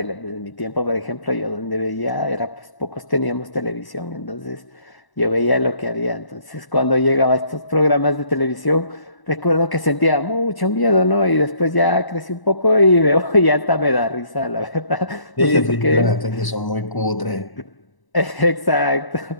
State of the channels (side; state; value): right; late; 1.0 ms